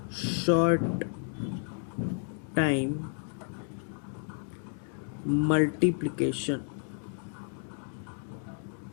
short time multiplication।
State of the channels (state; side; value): silent; right; 57 dB below the other